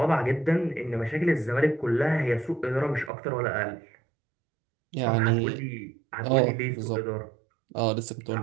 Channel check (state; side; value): drops out; left; at 3.1 s